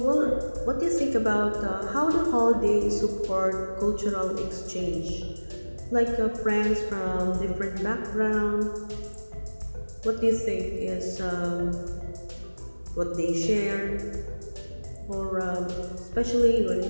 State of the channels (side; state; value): both; inverted; correlation -1.00